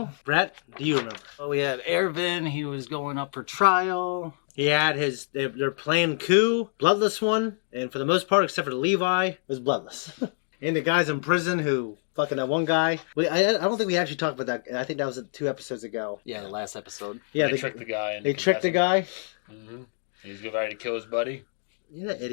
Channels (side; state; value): right; silent; digital silence